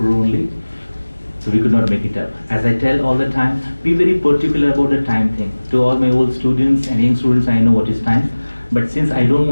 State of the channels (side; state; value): both; inverted; correlation -1.00